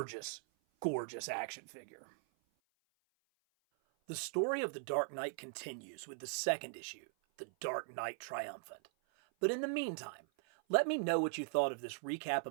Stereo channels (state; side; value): silent; left; 51 dB below the other